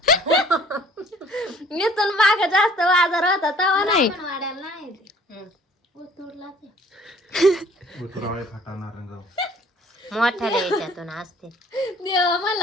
इथून माग जास्त बाजार होता तेव्हा नाही. वाड्याला नाही उतरला ते मोठ्याला याच्यातून असते. देवा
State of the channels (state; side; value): normal; both; correlation 0.55